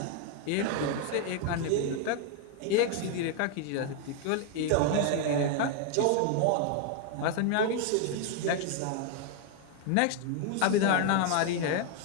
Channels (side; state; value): both; different; correlation 0.00